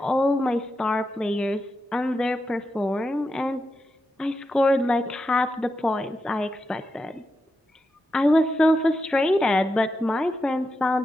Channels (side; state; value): both; normal; correlation 0.87